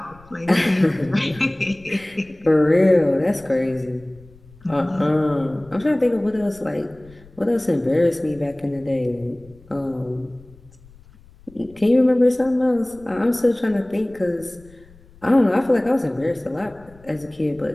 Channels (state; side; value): noise; left; rumble, 25 dB below the sound